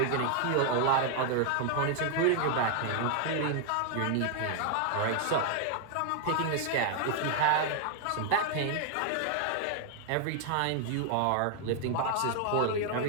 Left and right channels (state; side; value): different; both; correlation 0.00